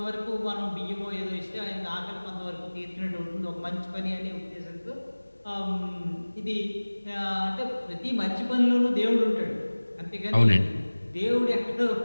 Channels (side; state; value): both; inverted; correlation -1.00